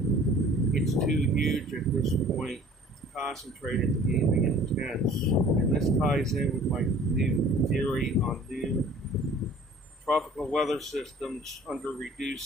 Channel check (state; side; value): normal; both; correlation 0.50